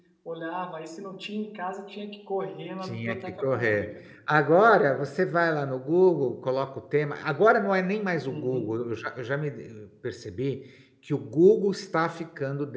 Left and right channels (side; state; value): both; identical; correlation 1.00